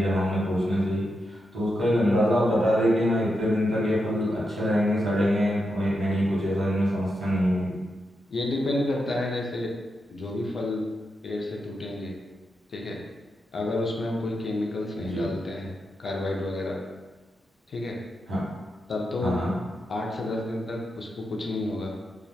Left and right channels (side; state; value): both; normal; correlation 0.86